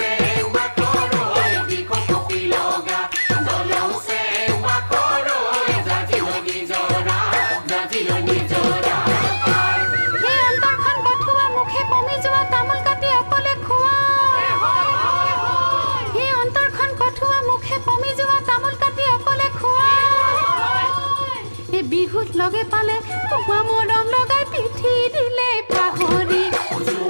লগে পালে কুকুৱা মৰম লগাই পিঠি দিলে পাহৰি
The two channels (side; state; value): both; inverted; correlation -1.00